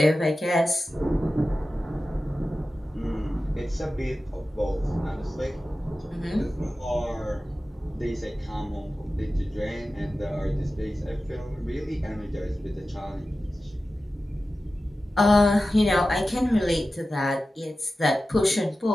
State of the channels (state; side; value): normal; both; correlation 0.94